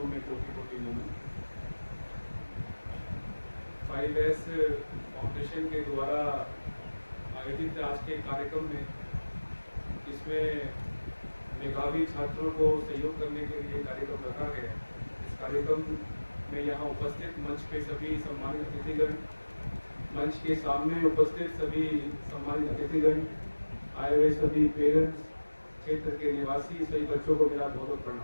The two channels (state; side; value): inverted; both; correlation -1.00